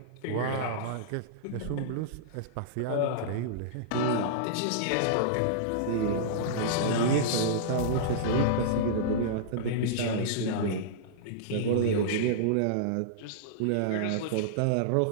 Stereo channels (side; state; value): both; different; correlation -0.02